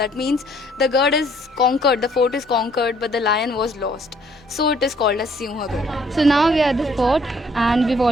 means the Gad is conquered, the fort is conquered, but the lion was lost. So it is called as Sinha Gad. So now we are at the fort and we've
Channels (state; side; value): normal; both; correlation 0.63